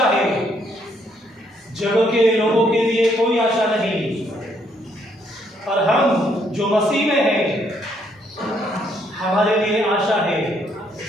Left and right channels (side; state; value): both; normal; correlation 0.70